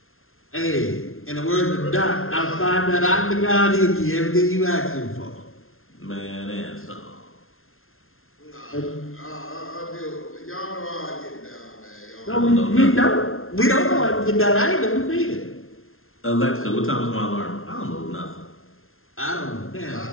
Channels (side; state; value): right; late; 0.61 ms